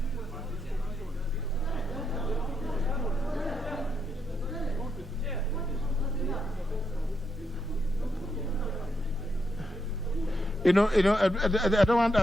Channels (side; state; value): both; normal; correlation 0.80